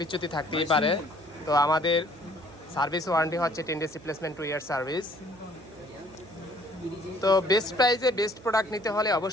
থাকতেই পারে। তো আমাদের সার্ভিস ওয়ারেন্টি হচ্ছে 10 days রিপ্লেসমেন্ট, 2 year সার্ভিস। তো বেস্ট প্রাইজে বেস্ট প্রোডাক্ট নিতে হলে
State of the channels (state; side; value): noise; right; hum, 22 dB below the sound